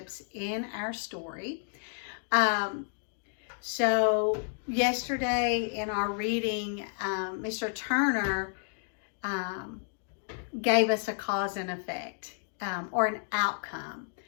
in our story. So yesterday in our reading, Mr. Turner gave us a cause and effect or an outcome.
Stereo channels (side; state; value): right; silent; digital silence